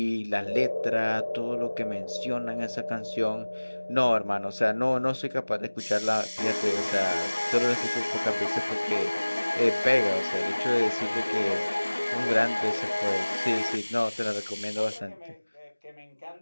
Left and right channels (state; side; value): inverted; both; correlation -1.00